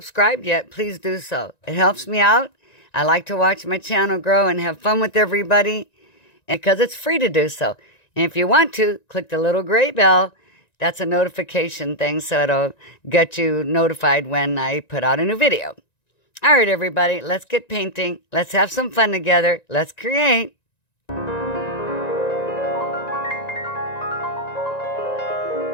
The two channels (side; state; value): right; late; 1.9 ms